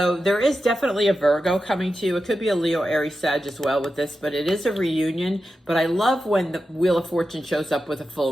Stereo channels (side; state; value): both; normal; correlation 0.90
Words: there is definitely a Virgo coming to you. It could be a Leo, Aries, Sag as well with this, but it is a reunion. But I love when the Wheel of Fortune shows up with a